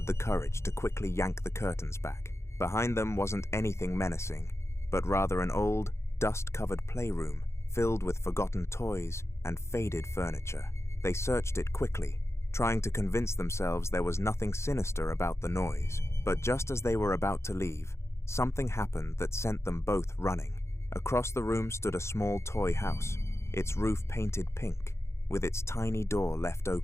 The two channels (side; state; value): right; late; 0.13 ms